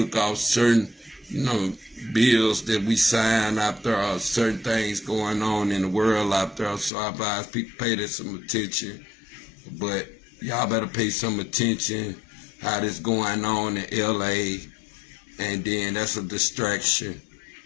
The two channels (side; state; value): right; drops out; at 6.9 s